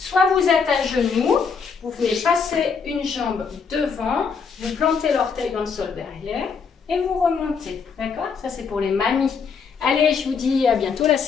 vous êtes à genoux, vous venez passer une jambe devant, vous plantez l'orteil dans le sol derrière et vous remontez. D'accord? Ça, c'est pour les mamies. Allez, je vous dis à bientôt, la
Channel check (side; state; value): right; quieter; 5.8 dB